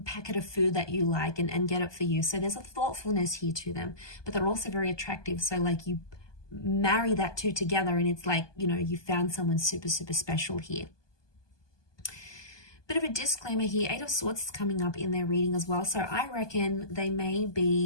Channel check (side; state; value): right; late; 1.2 ms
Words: packet of food that you like and get it for you. So there's a thoughtfulness here to them, but they're also very attractive. So like you marry that two together and it's like, you know, you found someone super, super special here. Bit of a disclaimer here, Eight of Swords is coming up in their reading as well. So I reckon they may